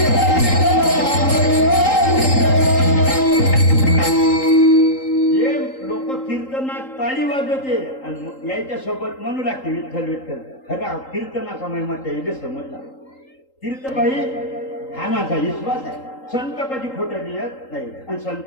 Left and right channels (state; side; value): late; right; 3.8 ms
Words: ताळी वाजवते आणि यायच्या सोबत म्हणू लागते विठ्ठल विठ्ठल. खरा कीर्तनाचा महिमा त्याला समजला. कीर्तबाई हा माझा विश्वास आहे. संत कधी खोटं लिहत नाही आणि